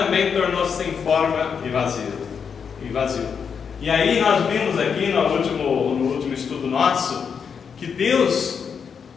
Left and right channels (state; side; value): quieter; right; 6.6 dB